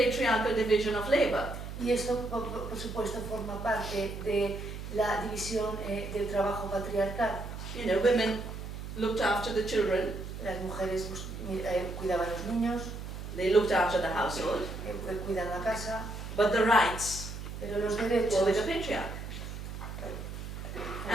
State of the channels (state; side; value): noise; right; hum, 8 dB below the sound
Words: division of labor. Y esto por supuesto forma parte de la división del trabajo patriarcal. Women looked after the children. Las mujeres cuidaban a los niños. They looked after the household. Cuidan la casa. But the rights Pero los derechos were with the patriarch.